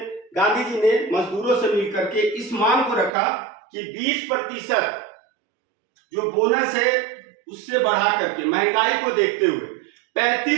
जी ने मजदूरों से मिलकर के इस मांग को रखा कि 20% जो बोनस है उससे बढ़ा करके महंगाई को देखते हुए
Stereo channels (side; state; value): left; drops out; at 3.1 s